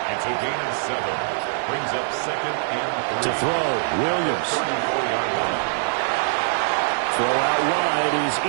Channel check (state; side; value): silent; left; 63 dB below the other